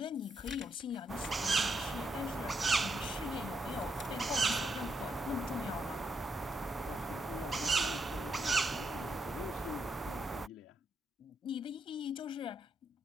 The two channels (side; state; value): both; normal; correlation 0.78